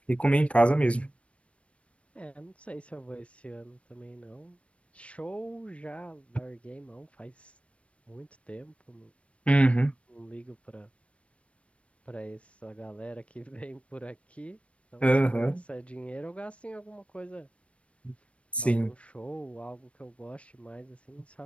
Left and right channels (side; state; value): right; late; 0.062 ms